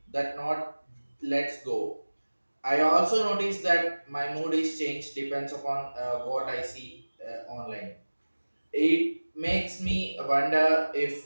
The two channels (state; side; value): inverted; both; correlation -1.00